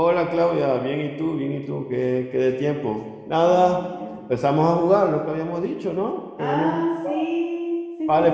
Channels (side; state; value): both; identical; correlation 1.00